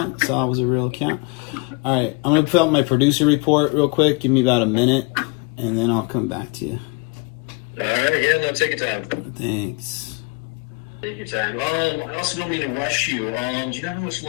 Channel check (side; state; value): right; quieter; 28.8 dB